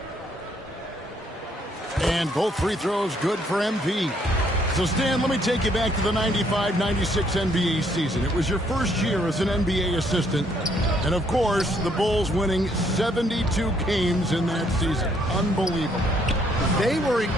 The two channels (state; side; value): normal; both; correlation 0.68